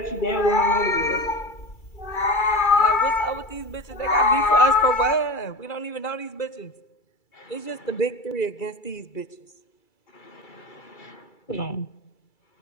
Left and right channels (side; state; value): right; late; 2.3 ms